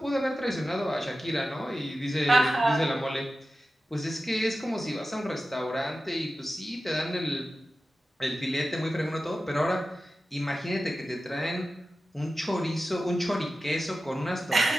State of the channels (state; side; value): normal; both; correlation 0.94